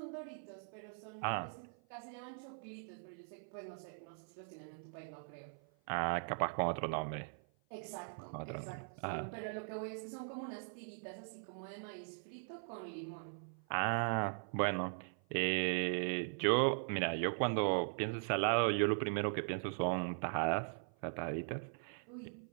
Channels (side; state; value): left; silent; 51 dB below the other